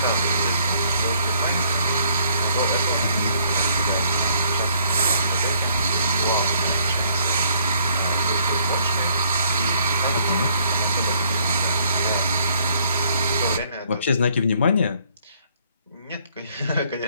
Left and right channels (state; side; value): inverted; both; correlation -0.65